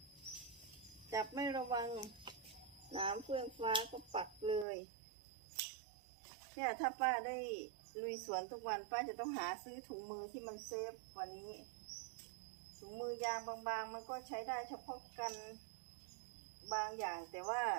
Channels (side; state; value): left; drops out; at 4.7 s